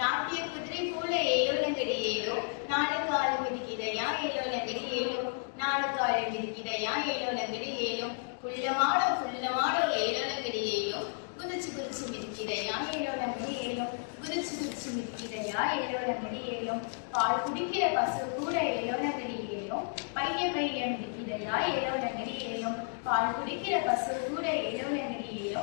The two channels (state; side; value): silent; right; 56 dB below the other